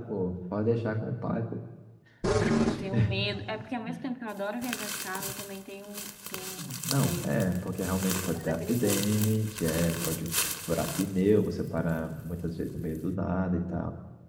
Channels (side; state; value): both; identical; correlation 1.00